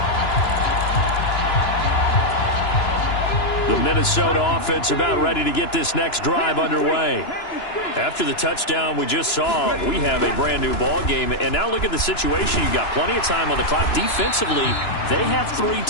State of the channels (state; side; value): late; right; 2.9 ms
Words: The Minnesota offense about ready to get this next drive underway. After the touchdown we just saw, we have a brand new ball game. And now look at the situation. You've got plenty of time on the clock. Defensively, they have 3